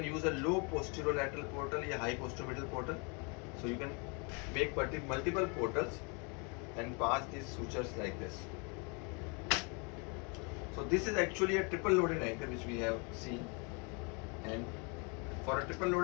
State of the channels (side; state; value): right; quieter; 33.3 dB